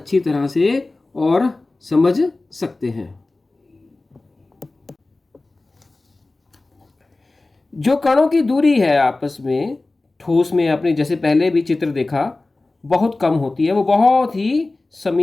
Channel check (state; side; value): quieter; right; 3.1 dB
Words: तरह से और समझ सकते हैं। जो कणों की दूरी है आपस में, ठोस में आपने जैसे पहले भी चित्र देखा, बहुत कम होती है, वो बहुत ही